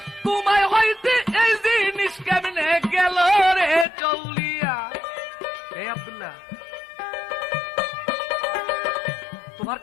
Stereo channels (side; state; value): right; drops out; at 3.9 s